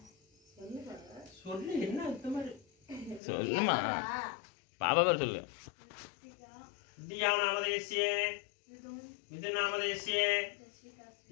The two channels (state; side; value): drops out; right; at 3.2 s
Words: சொல்லு பாப்பா. சொல்லு என்ன இந்த மாதிரி சொல்லுமா பாப்பா பேர் சொல்லு. தியா நாமதேசிய மிதுன் நாமதேசிய